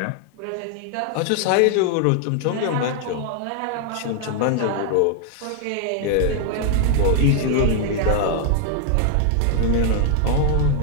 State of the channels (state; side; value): different; both; correlation 0.00